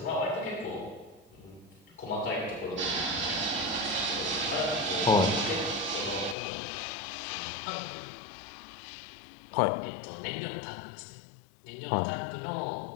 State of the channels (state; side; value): drops out; right; at 6.4 s